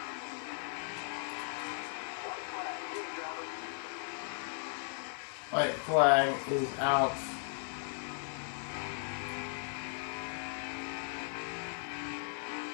White flag is out.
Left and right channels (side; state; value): right; silent; 53 dB below the other